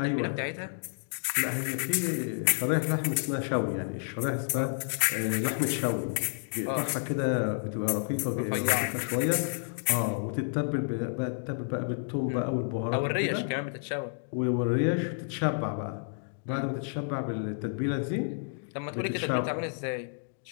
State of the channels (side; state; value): right; silent; digital silence